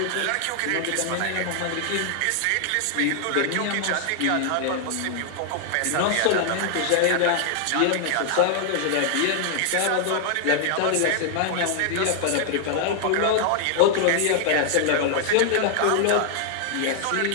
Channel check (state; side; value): different; both; correlation 0.00